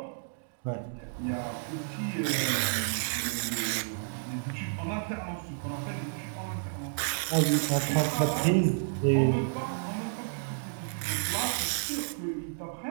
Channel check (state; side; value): silent; left; digital silence